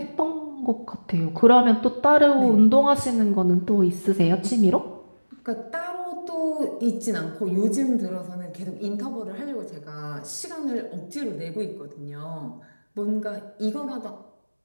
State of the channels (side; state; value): both; inverted; correlation -1.00